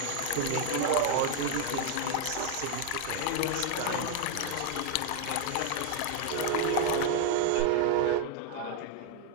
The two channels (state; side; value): different; both; correlation 0.00